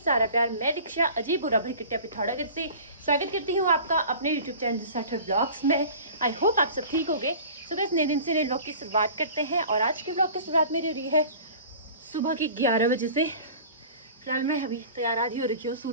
सारा प्यार। मैं दीक्षा अजीब बुरा भरी किट्टिया पिथौरागढ़ से स्वागत करती हूँ आपका अपने यूट्यूब चैनल साठर ब्लॉग्स में। आई होप आप सब ठीक होंगे। सो गाइस, नए दिन से नए ब्लॉग की शुरुआत करते हैं और आज के ब्लॉग की शुरुआत मेरी हो रही है सुबह के 11 बजे से। फिलहाल मैं अभी तैयार आधी हो रखी हूँ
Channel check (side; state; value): both; inverted; correlation -0.42